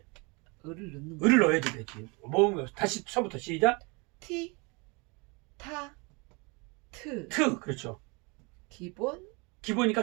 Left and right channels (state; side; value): quieter; left; 29.4 dB